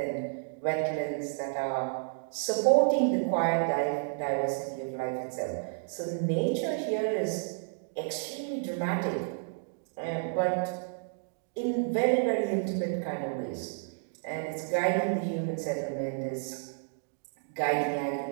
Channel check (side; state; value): left; silent; digital silence